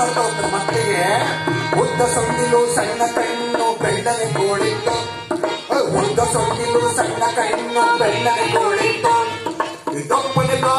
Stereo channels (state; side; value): identical; both; correlation 1.00